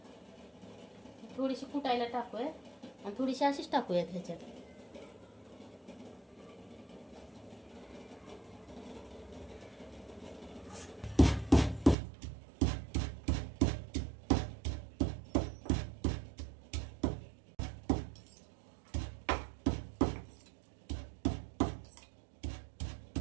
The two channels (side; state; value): left; drops out; at 12.0 s